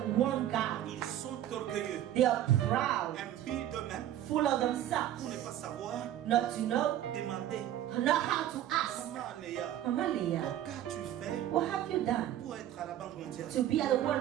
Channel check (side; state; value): left; quieter; 12.1 dB